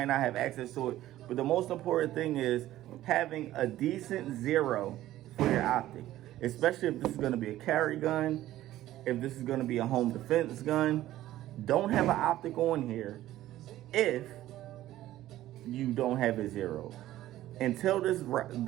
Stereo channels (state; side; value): quieter; left; 14.4 dB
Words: not have access to it, but the most important thing is having a decent zero for your optic, especially if this is going to be a carry gun, if this is going to be a home defense gun. Don't have an optic on here if you don't have a zero. Until this